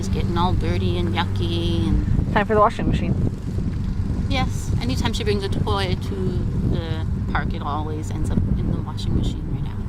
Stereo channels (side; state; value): both; identical; correlation 1.00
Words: getting all dirty and yucky. And Time for the washing machine. yes, anytime she brings a toy to the park, it always ends up in the washing machine right